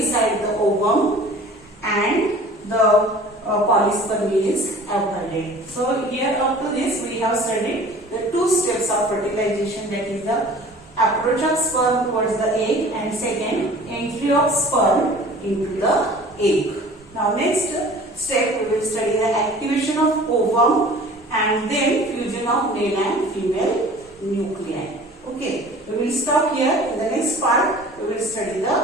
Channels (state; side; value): normal; both; correlation 0.45